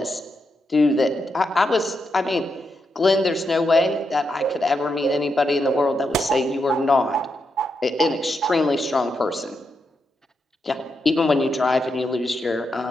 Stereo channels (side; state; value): both; normal; correlation 0.83